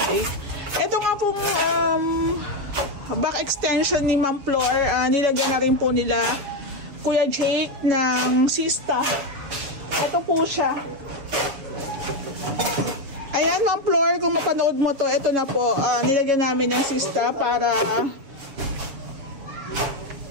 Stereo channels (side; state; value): left; late; 7.1 ms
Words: Ito nga po, back extension ni Ma'am Flor, nilagyan na rin po nila Kuya Jake ng Sista. Ito po siya. Ayan, Ma'am Flor, kung mapanood mo to, ito na po, nilagyan namin ng Sista para